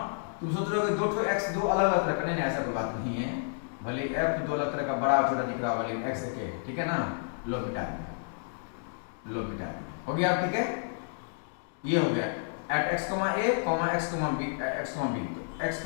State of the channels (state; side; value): silent; right; digital silence